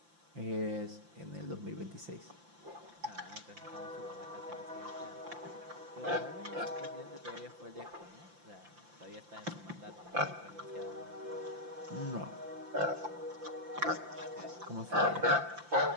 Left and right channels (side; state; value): left; late; 5.8 ms